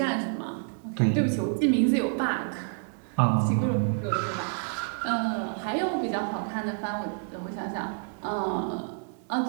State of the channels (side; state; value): left; silent; 59 dB below the other